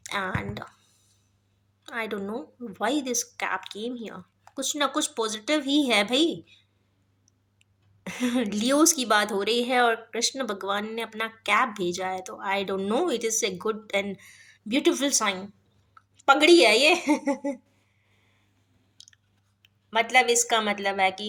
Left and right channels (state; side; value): identical; both; correlation 1.00